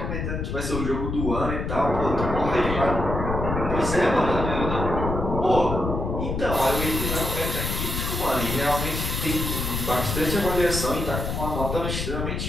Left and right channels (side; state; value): left; noise; rumble, 3 dB below the sound